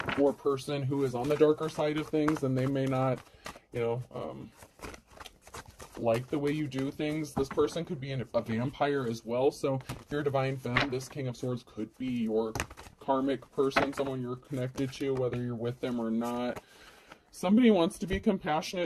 or person who is on the darker side of things, and they may not, like the way you do things. This person could be a vampire as well. So if you're a divine femme, this King of Swords could be your karmic person, someone you're connected to, whether you're with them or not. Somebody wants to be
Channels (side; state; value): both; identical; correlation 1.00